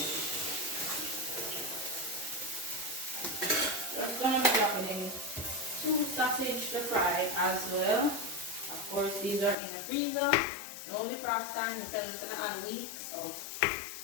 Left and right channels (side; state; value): right; drops out; at 9.6 s